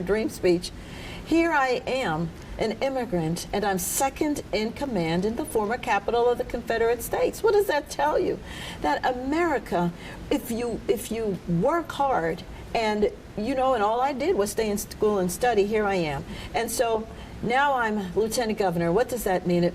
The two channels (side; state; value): both; identical; correlation 1.00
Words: Dream speech, here I am, an immigrant, and I'm second in command in the former capital of the Confederate States. What does that tell you? That America, if you work hard, and you know, and all I did was stay in school and study, here I am. And so now I'm lieutenant governor. What does that mean?